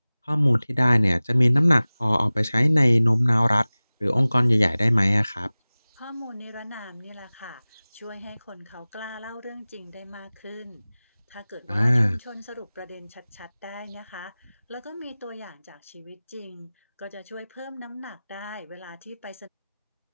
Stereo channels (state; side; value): inverted; both; correlation -0.98